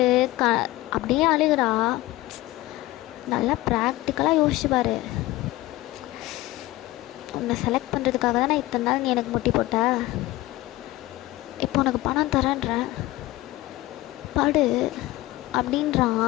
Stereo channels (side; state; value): right; quieter; 18.1 dB